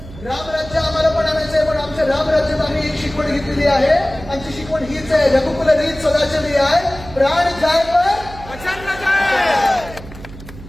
रामराज्य आम्हाला पण आणायचं आहे, पण आमच्या रामराज्यात आम्ही एक शिकवण घेतलेली आहे. आमची शिकवण हीच आहे, रघुकुल रीत सदा चली आहे, प्राण जाय पण वचन न जाय.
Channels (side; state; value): right; noise; hum, 16 dB below the sound